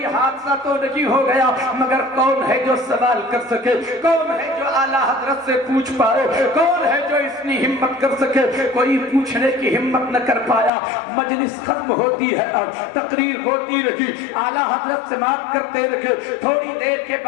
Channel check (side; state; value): right; drops out; at 10.7 s